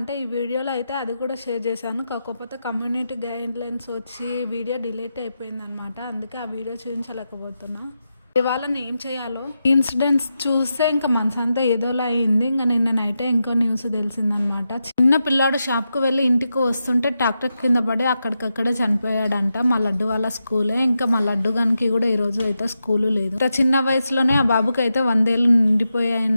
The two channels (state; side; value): inverted; both; correlation -0.88